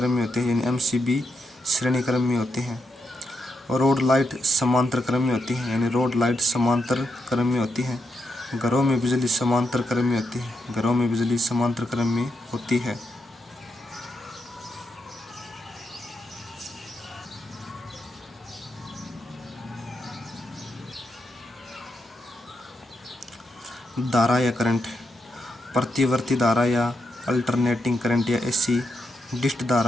में होते हैं, यानी एमसीबी श्रेणी क्रम में होते हैं। रोड लाइट समांतर क्रम में होती है, यानी रोड लाइट समांतर क्रम में होती है। घरों में बिजली समांतर क्रम में होती है। घरों में बिजली समांतर क्रम में होती है। धारा या करंट, प्रतिवर्ती धारा या अल्टरनेटिंग करंट या एसी, डिस्ट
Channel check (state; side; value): normal; both; correlation 0.82